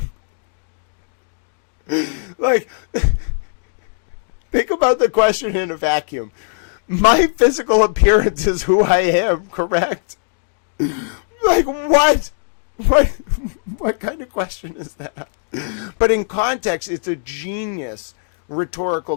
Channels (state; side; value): silent; right; digital silence